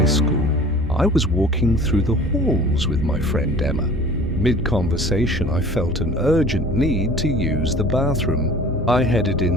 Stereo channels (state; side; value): normal; both; correlation 0.46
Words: school, I was walking through the halls with my friend Emma. Mid-conversation, I felt an urgent need to use the bathroom. I headed